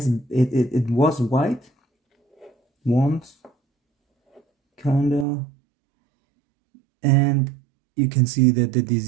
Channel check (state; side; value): drops out; left; at 5.2 s